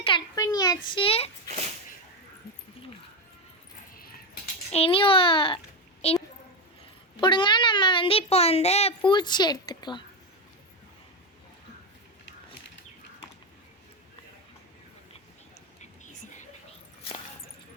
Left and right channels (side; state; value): both; normal; correlation 0.11